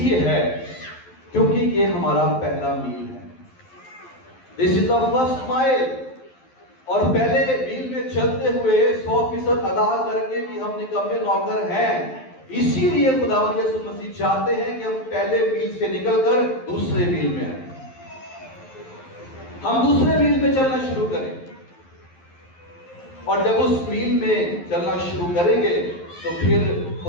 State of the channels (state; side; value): late; right; 11 ms